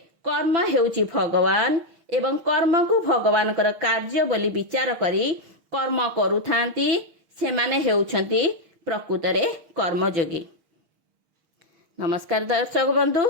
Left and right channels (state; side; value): late; left; 6.4 ms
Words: कर्म हेउची भगवान एवं कर्म को भगवान कर कार्य बोली विचार करी कर्म करुथांती सेमाने हेउछंती प्रकृतरे कर्मयोगी। नमस्कार दर्शक बंधु,